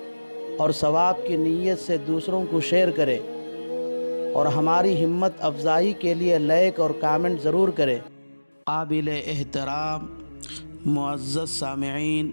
اور ثواب کی نیت سے دوسروں کو شیئر کریں اور ہماری ہمت افزائی کے لیے لائک اور کامنٹ ضرور کریں۔ قابل احترام معزز سامعین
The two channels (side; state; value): both; inverted; correlation -1.00